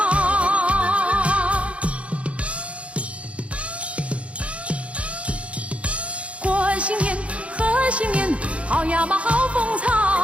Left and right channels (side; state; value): left; late; 0.062 ms